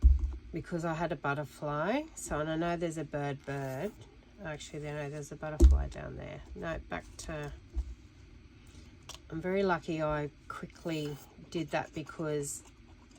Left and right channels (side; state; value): both; identical; correlation 1.00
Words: because I had a butterfly. So, and I know there's a bird. Actually, there's a butterfly down there. No, back to... I'm very lucky I quickly did that, because